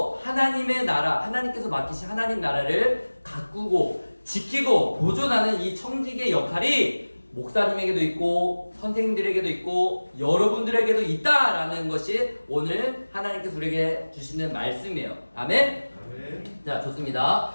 하나님의 나라, 하나님께서 맡기신 하나님 나라를 가꾸고 지키고 보존하는 이 청지기의 역할이 목사님에게도 있고 선생님들에게도 있고 여러분들에게도 있다라는 것이 오늘 하나님께서 우리에게 주시는 말씀이에요. 아멘? 자, 좋습니다.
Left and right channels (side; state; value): both; inverted; correlation -1.00